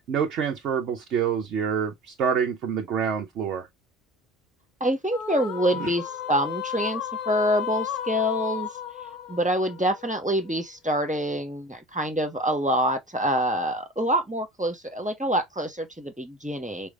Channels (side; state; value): both; normal; correlation 0.40